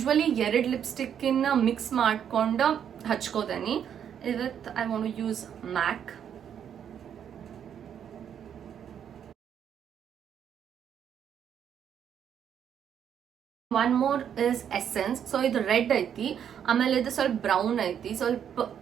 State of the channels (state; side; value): quieter; left; 8.8 dB